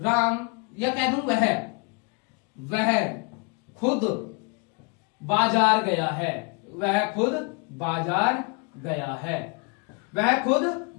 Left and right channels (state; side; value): quieter; right; 33.2 dB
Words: या कह दूं वह खुद बाजार गया है, वह खुद बाजार गया है, वह खुद